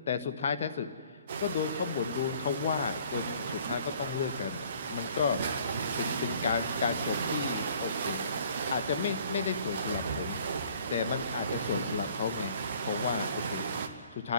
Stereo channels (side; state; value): both; inverted; correlation -0.56